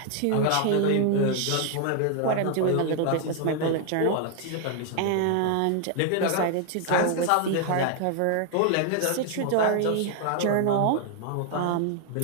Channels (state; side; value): different; both; correlation 0.00